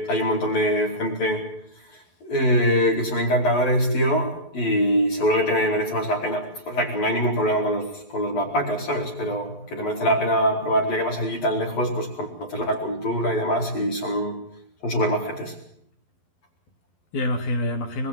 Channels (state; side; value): late; right; 11 ms